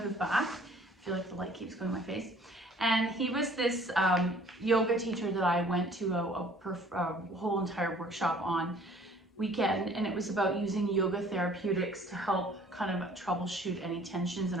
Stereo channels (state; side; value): normal; both; correlation 0.54